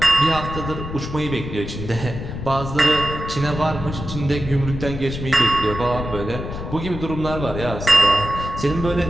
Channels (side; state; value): left; noise; rumble, 8 dB below the sound